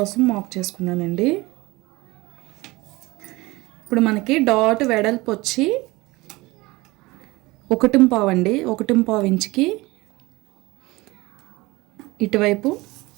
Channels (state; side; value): quieter; left; 21.5 dB